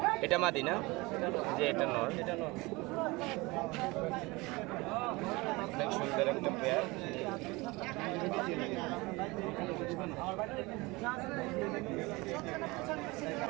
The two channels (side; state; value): left; quieter; 23.5 dB